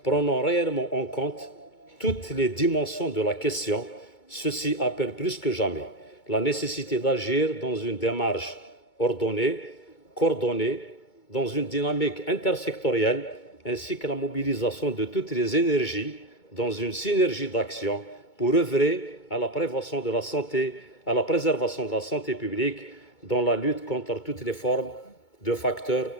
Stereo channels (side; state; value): right; late; 2.2 ms